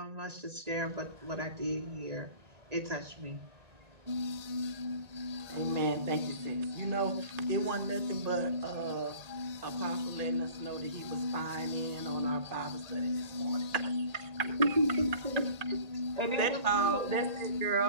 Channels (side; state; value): left; late; 1.8 ms